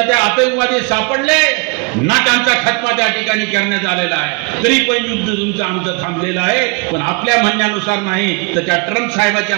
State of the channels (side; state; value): left; quieter; 30.9 dB